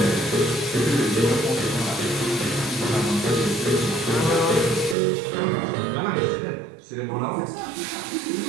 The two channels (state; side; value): drops out; left; at 5.0 s